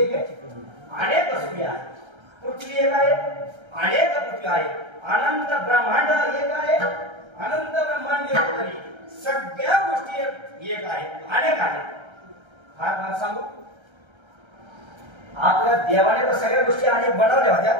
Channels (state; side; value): late; left; 1.3 ms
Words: अनेक सूर्य आहे पृथ्वी एक आहे अनेक पृथ्वी आहे अनंत ब्रह्मांड एक आहे अनंत ब्रह्मांड तरी सगळ्या गोष्टी एक आहेत अनेक आहेत हा सांगू आपल्या देवाने तर सगळ्या गोष्टी अनेक बनवल्या होत्या